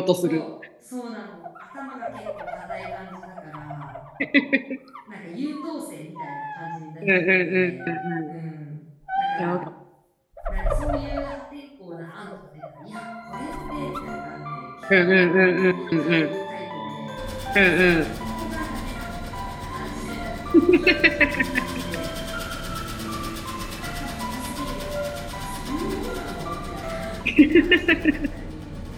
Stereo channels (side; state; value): both; identical; correlation 1.00